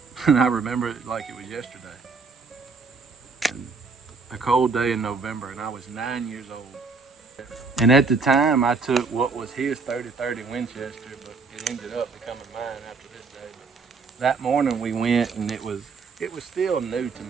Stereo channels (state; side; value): quieter; left; 4.6 dB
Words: And I remember it like it was yesterday. And a cold day in November, and I was 9 years old. And at the time, I took what was his 30-30 Winchester, but it ended up becoming mine after this day. But that morning we went, and it was still new to